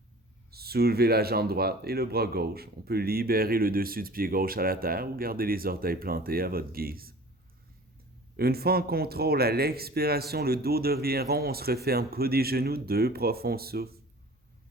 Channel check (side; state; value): both; normal; correlation 0.44